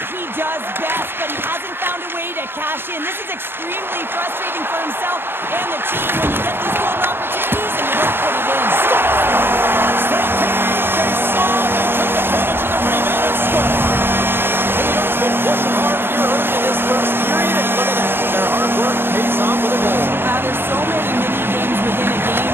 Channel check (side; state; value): left; late; 0.10 ms